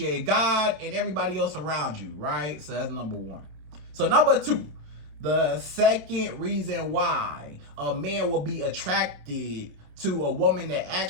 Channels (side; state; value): left; late; 27 ms